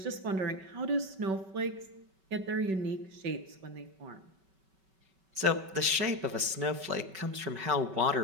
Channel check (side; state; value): left; late; 5.3 ms